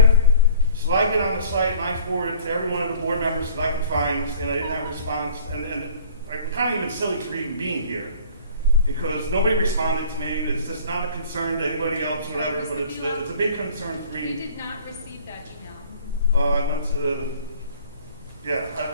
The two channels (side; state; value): both; inverted; correlation -0.50